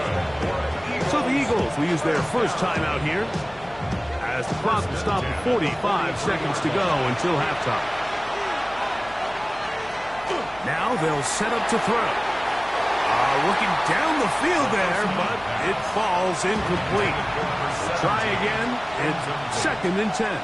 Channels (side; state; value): left; noise; hum, 22 dB below the sound